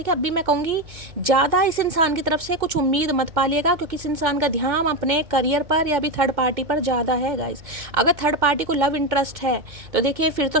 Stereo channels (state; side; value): late; left; 2.2 ms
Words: अब भी मैं कहूँगी ज़्यादा इस इंसान की तरफ से कुछ उम्मीद मत पालिएगा, क्योंकि इस इंसान का ध्यान अपने करियर पर या भी थर्ड पार्टी पर ज़्यादा है गाइस। अगर थर्ड पार्टी को लव इंटरेस्ट है तो देखिए फिर तो